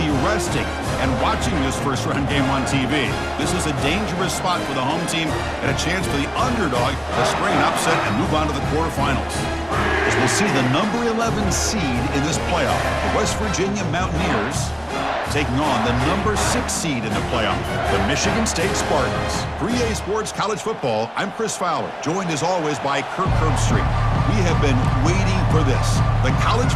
resting and watching this first-round game on TV. This is a dangerous spot for the home team and a chance for the underdog to spring an upset and move on to the quarterfinals. As we'll see the number 11 seed in this playoff, the West Virginia Mountaineers, taking on the number 6 seed in the playoff, the Michigan State Spartans. For EA Sports College Football, I'm Chris Fowler, joined as always by Kirk Herbstreit. We have been waiting for this, the college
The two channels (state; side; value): identical; both; correlation 1.00